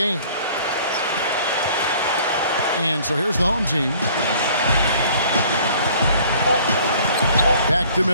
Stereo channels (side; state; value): both; inverted; correlation -0.53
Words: And so here's the home team. Back to